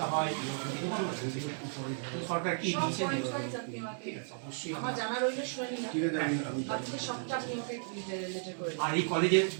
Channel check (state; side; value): silent; left; digital silence